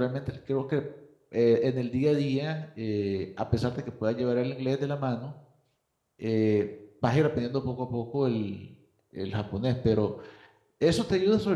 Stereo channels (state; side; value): identical; both; correlation 1.00